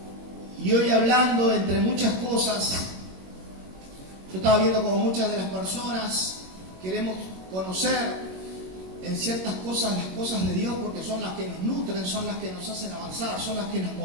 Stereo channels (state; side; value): late; left; 21 ms